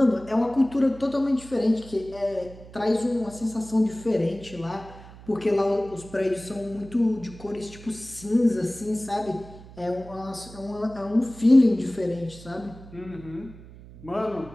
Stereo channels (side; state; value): right; noise; hum, 18 dB below the sound